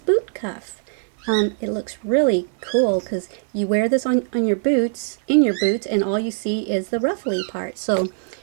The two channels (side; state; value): left; silent; 61 dB below the other